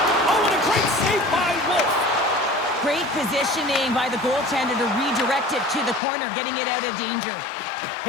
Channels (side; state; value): right; drops out; at 6.0 s